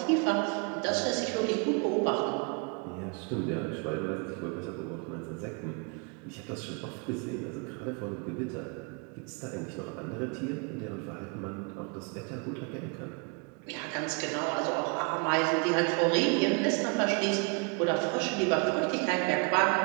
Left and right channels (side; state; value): left; quieter; 34.2 dB